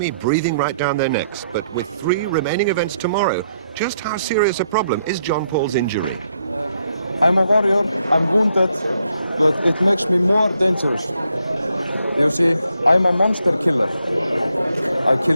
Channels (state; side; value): inverted; both; correlation -0.76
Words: breathing right down their necks. But with 3 remaining events tomorrow, just how serious a problem is John Paul's injury? I'm a warrior, I'm wounded, but it makes me more dangerous. You see, I'm a monster killer. I